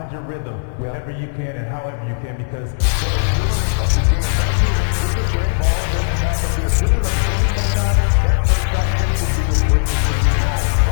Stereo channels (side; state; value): right; silent; 68 dB below the other